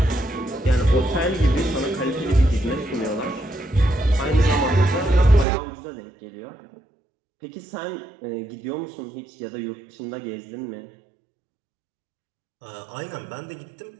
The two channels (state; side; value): drops out; left; at 5.5 s